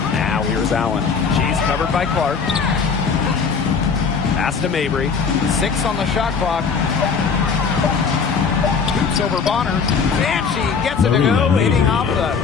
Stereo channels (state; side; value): quieter; right; 5.7 dB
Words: Now here's Allen. She's covered by Clark. Pass to Mabry. 6 on the shot clock. Shoots over Bonner. And she gets it to go, hitting off the